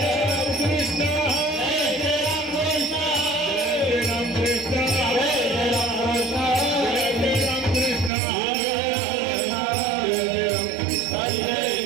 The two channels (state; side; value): drops out; left; at 8.1 s